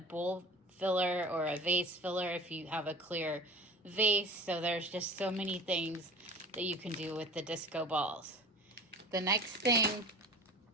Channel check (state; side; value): normal; both; correlation 0.39